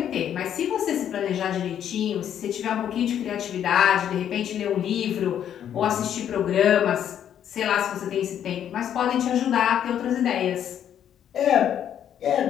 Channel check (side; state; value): right; quieter; 9.7 dB